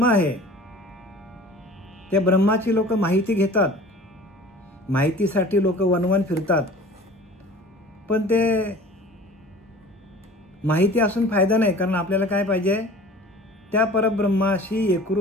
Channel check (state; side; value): normal; both; correlation 0.44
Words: आहे त्या ब्रह्माची लोक माहिती घेतात, माहितीसाठी लोक वनवन फिरतात, पण ते माहिती असून फायदा नाही. कारण आपल्याला काय पाहिजे, त्या परब्रह्माशी